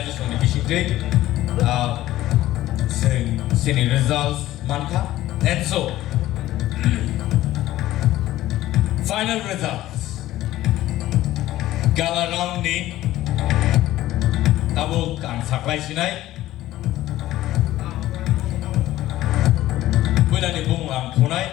on the issue day. Senior results, manka. And so, final results. Gala round ni abo ang saklay sinay. Pwede ni bung ang punay.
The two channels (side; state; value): right; quieter; 15.0 dB